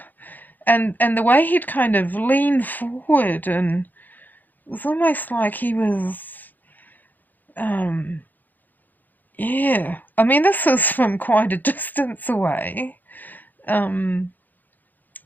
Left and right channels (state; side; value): late; right; 0.086 ms